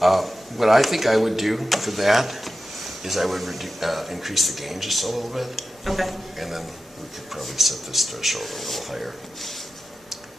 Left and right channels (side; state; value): both; normal; correlation 0.92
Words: What I think I would do for that is I would increase the gain just a little bit, Okay. and then we could probably set this threshold a little higher.